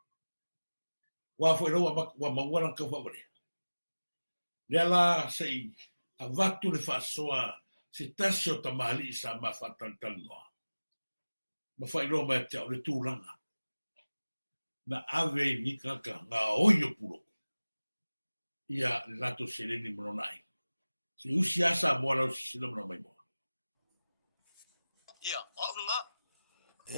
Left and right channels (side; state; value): both; inverted; correlation -0.99